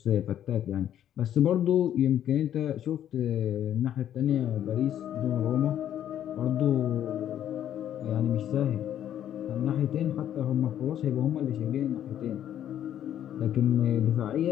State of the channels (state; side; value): quieter; right; 10.7 dB